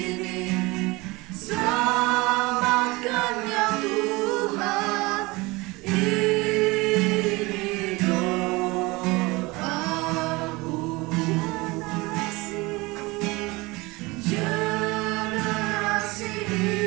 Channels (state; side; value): quieter; left; 23.2 dB